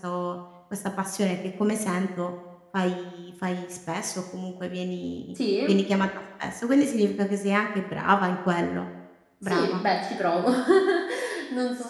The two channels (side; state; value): both; identical; correlation 1.00